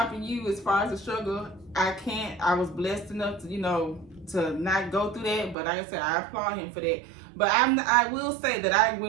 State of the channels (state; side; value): drops out; left; at 5.6 s